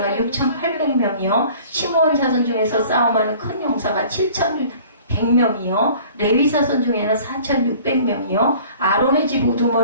6,800명이요. 시므온 자손 중에서 싸움하는 큰 용사가 7,100명이요. 레위 자손 중에는 4,600명이요. 아론의 집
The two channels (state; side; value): inverted; both; correlation -0.49